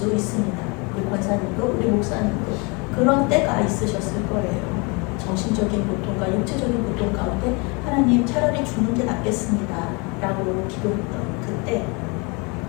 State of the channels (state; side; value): quieter; right; 30.2 dB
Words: 있습니다. 우리 권사님도 우리 목사님도 그런 때가 있으셨을 거예요. 정신적인 고통과 육체적인 고통 가운데 하나님 차라리 죽는 게 낫겠습니다 라고 기도했던 그때,